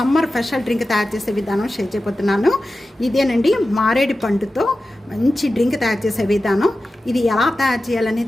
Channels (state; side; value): normal; both; correlation 0.94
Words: స్పెషల్ డ్రింక్ తయారు చేసే విధానం షేర్ చేయబోతున్నాను. ఇదేనండి మారేడు పండుతో మంచి డ్రింక్ తయారు చేసే విధానం. ఇది ఎలా తయారు